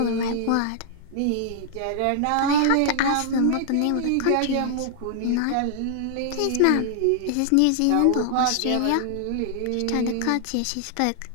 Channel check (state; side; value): different; both; correlation 0.00